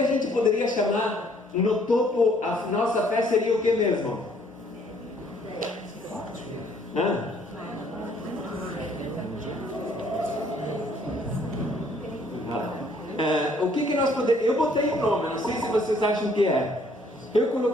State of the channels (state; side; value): normal; both; correlation 0.63